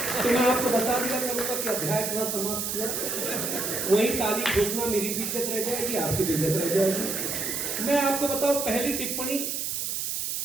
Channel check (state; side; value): noise; right; hiss, 2 dB below the sound